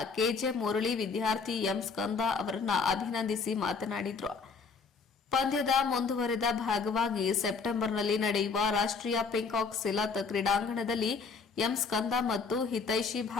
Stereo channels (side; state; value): right; quieter; 4.9 dB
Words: ಕೆಜೆ ಮುರಳಿ ವಿದ್ಯಾರ್ಥಿ ಎಂ ಸ್ಕಂದ ಅವರನ್ನ ಅಭಿನಂದಿಸಿ ಮಾತನಾಡಿದರು. ಪಂದ್ಯದ ಮುಂದುವರೆದ ಭಾಗವಾಗಿ ಸೆಪ್ಟೆಂಬರ್ನಲ್ಲಿ ನಡೆಯುವ ರಾಷ್ಟ್ರೀಯ ಪಿಂಕಾಕ್ ಸಿಲತ್ ಕ್ರೀಡಾಂಗಣದಲ್ಲಿ ಎಂ ಸ್ಕಂದ ಮತ್ತು ಹಿತೈಷಿ